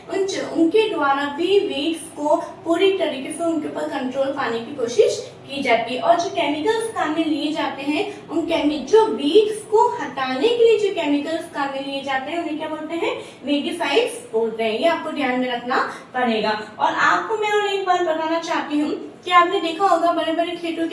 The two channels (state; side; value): identical; both; correlation 1.00